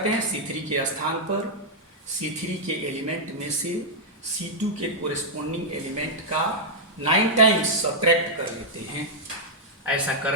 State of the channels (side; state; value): both; normal; correlation -0.06